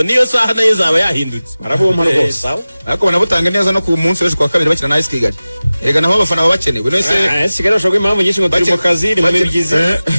niyo saha nayo zaba yahindutse baraboma rwose ariko banabutanga neza no ku munsi w'ejo kwa kabiri bakina na AS Kigali Erega naho abafana baba bakenewe nese Kigali bashobora kuba impamvu nyinshi ngo turi mu kazi ni muri byiza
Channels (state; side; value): inverted; both; correlation -0.97